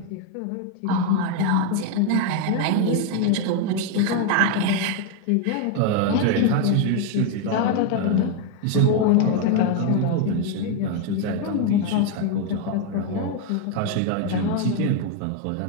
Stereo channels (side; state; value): both; different; correlation 0.01